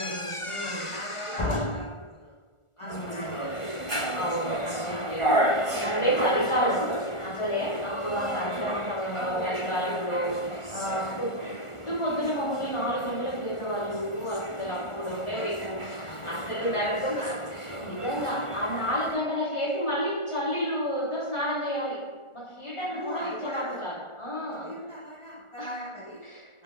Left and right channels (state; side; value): late; right; 1.4 ms